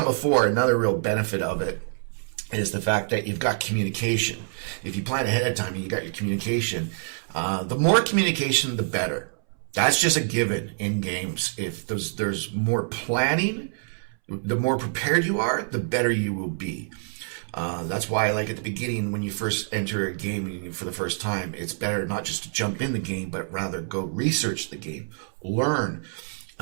before, another real benefit of it is the fact that you've got communication. If you plan ahead of time and you got your communication, the more communication, the better. That's just a given in games. If there's more planning, the more prepared you are, the better you will be. That's why, like at the beginning, when you first enter a game for the first time, it's better not just to jump in the game, but rather go research the game, learn,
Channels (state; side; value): silent; left; 61 dB below the other